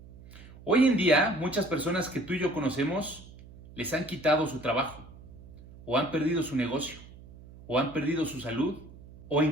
Hoy en día, muchas personas que tú y yo conocemos les han quitado su trabajo, o han perdido su negocio, o han perdido su salud, o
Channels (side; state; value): right; noise; hum, 19 dB below the sound